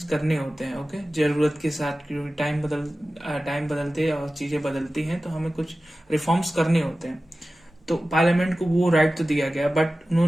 करने होते हैं। ओके, जरूरत के साथ, क्योंकि टाइम बदलते और चीजें बदलती हैं तो हमें कुछ रिफॉर्म्स करने होते हैं। तो पार्लियामेंट को वो राइट तो दिया गया, बट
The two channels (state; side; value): normal; both; correlation 0.95